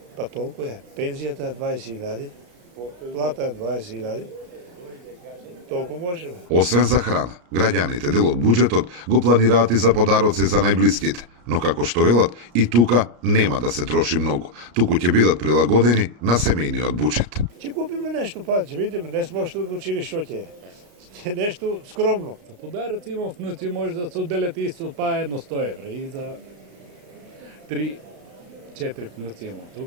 Па толку е. Пензијата е 20.000, плата е 20.000. Толку можеме. Освен за храна, граѓаните дел од буџетот го планираат и за подароци за најблиските. Но како што велат, и тука нема да се троши многу. Туку ќе бидат прилагодени на семејниот буџет. Ќе купиме нешто, па ќе видиме, не сме още одлучили што ќе е. Ќе нешто скромно. За подароци имам внуци, може да се отделят исто па едно 100 евра и за 3-4 внуци имам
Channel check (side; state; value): left; late; 34 ms